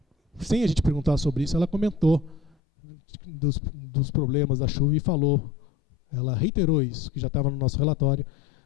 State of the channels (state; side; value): drops out; right; at 2.6 s